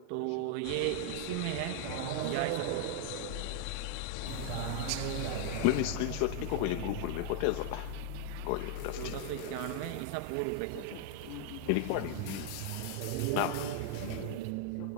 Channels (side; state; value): both; different; correlation 0.00